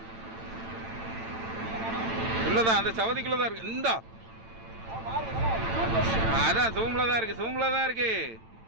உள்ளதான், அந்த சவதிக்குள்ள தான் இருக்கு. இந்தா அதான் சோம்புல தான் இருக்கு, சோம்புல தான் இருக்கு.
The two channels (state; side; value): late; left; 8.9 ms